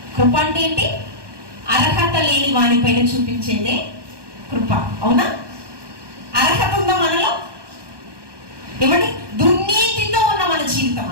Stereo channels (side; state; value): left; late; 1.2 ms